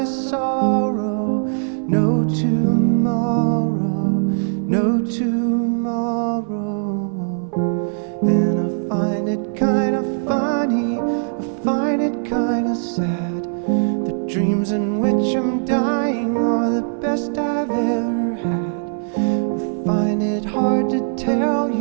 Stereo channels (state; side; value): silent; left; 61 dB below the other